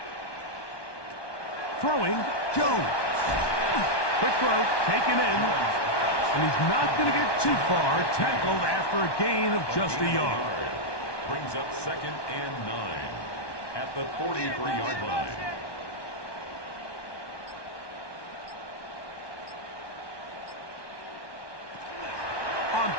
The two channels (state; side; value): late; right; 1.2 ms